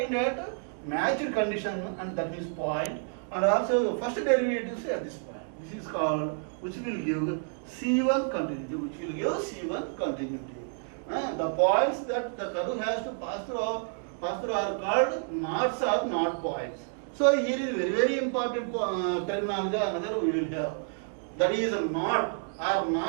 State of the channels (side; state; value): left; silent; 57 dB below the other